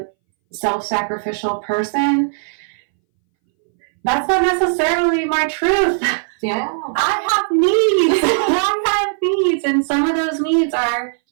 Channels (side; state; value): left; silent; 63 dB below the other